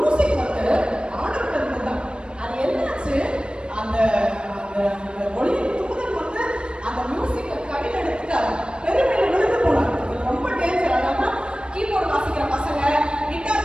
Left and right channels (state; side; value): late; left; 0.055 ms